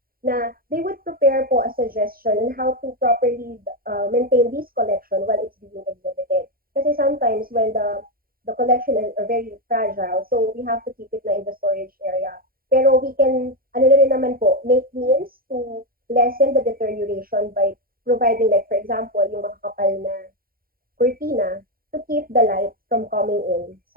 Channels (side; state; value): left; late; 0.42 ms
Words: na they would prepare po a suggestion on how to properly maintain this collection while it's being exhibited. Kasi sometimes when the collection are very fragile, so we have to keep it na in the storage area. Pero we can, make means to lessen the deterioration by providing, like, for example, yung makakapal na cortina to keep the light from coming in